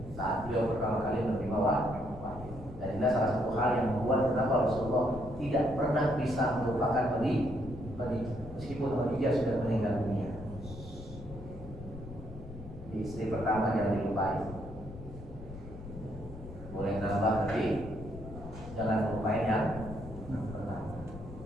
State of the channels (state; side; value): noise; left; rumble, 13 dB below the sound